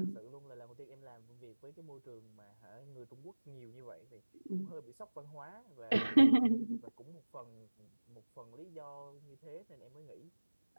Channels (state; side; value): inverted; both; correlation -1.00